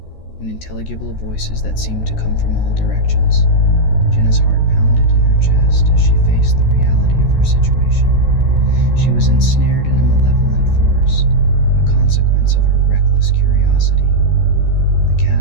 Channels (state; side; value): late; right; 14 ms